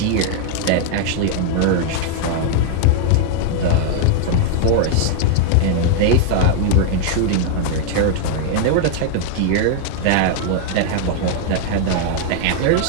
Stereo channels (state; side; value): different; both; correlation 0.00